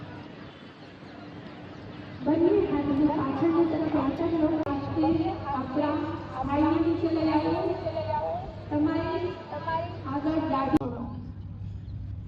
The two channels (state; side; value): identical; both; correlation 1.00